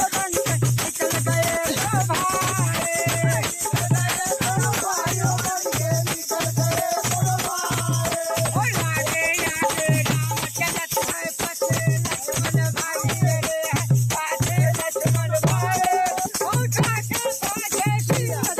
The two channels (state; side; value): identical; both; correlation 1.00